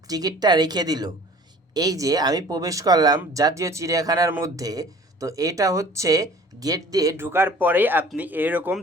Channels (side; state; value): both; normal; correlation 0.48